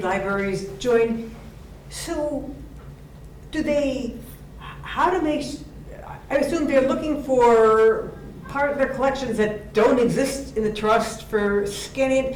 libraries joined. So, I assume they're looking for part of their collections that don't exist in the trust for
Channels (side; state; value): both; identical; correlation 1.00